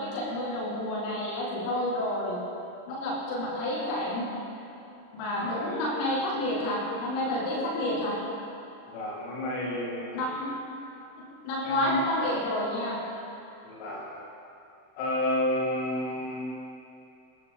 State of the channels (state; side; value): late; right; 39 ms